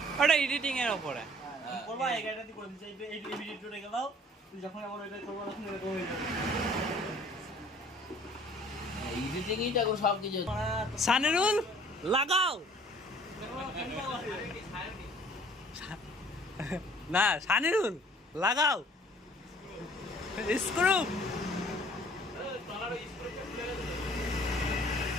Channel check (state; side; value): normal; both; correlation 0.54